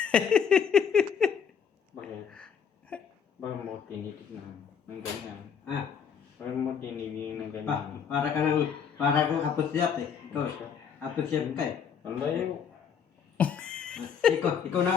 Bakit mo tinitig ng ganyan? Ah, Bakit mo tinigil ng ganyan? para kang apusyap eh. Apusyap ka eh. Ang layo. Ikaw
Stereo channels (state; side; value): quieter; right; 7.3 dB